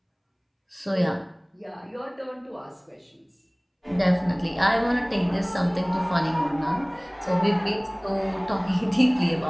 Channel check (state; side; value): identical; both; correlation 1.00